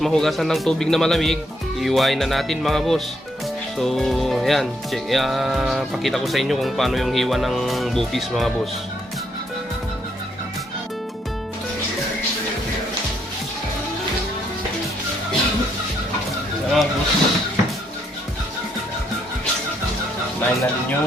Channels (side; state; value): both; normal; correlation 0.74